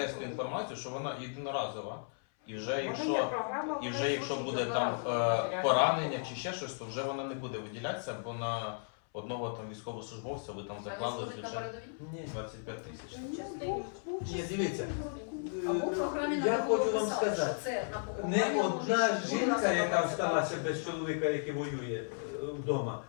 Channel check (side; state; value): right; silent; 55 dB below the other